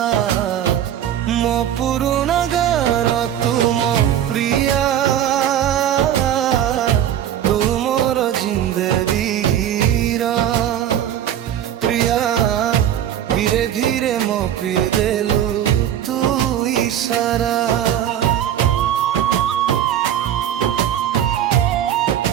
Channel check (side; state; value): left; quieter; 10.5 dB